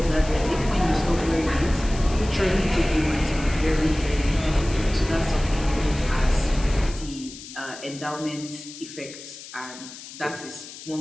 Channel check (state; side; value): noise; left; hiss, 14 dB below the sound